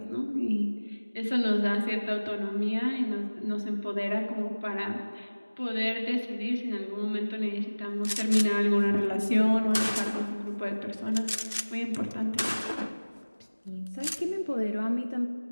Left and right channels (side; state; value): both; inverted; correlation -1.00